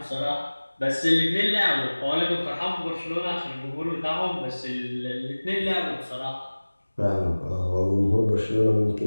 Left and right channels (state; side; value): inverted; both; correlation -1.00